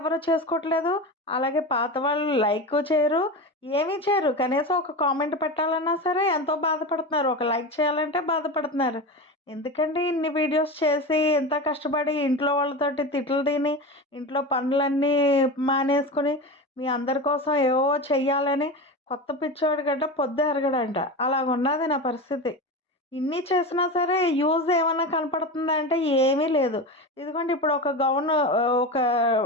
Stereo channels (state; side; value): normal; both; correlation 0.24